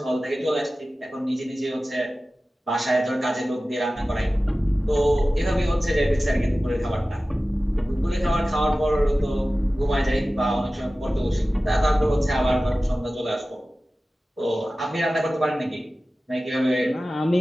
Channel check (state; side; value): normal; both; correlation 0.96